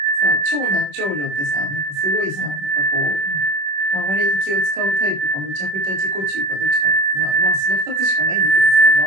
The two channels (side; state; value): left; late; 21 ms